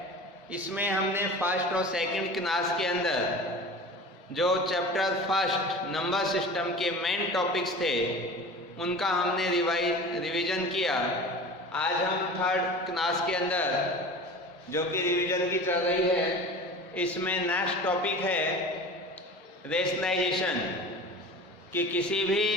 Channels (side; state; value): both; normal; correlation 0.36